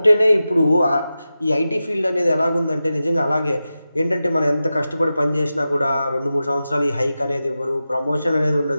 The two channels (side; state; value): both; inverted; correlation -0.93